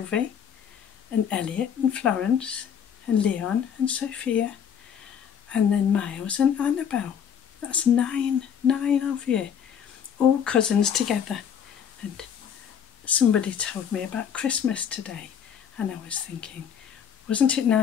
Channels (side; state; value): right; quieter; 8.1 dB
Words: and Elliot and Florence and Leon and Sophia and then Miles and Annabelle. That's nine of you, all cousins together. And somebody told me about Christmas today, and I was thinking, wasn't it